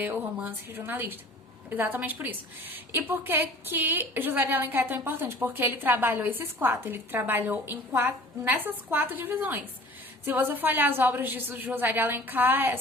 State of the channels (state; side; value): normal; both; correlation 0.46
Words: o romance regionalista. Exatamente por isso. E por que José de Alencar é tão importante? Porque ele trabalhou esses 4. Ele trabalhou nessas 4 divisões. Se você for olhar as obras de José de Alencar,